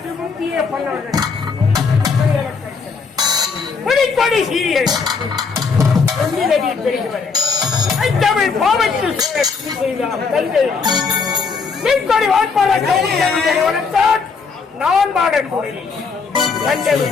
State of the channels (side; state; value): right; quieter; 5.1 dB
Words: முந்திய பண்ணவர்கள் புலிக்கொடி சீரியல் பெருகுவது தமிழ் பாவத்தில் தந்தை மீன்கொடி வாட்பாளர் நான் பாடக்கூடிய தந்தை